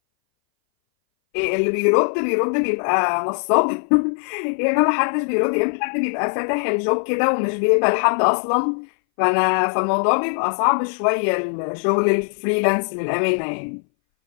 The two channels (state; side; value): silent; right; 61 dB below the other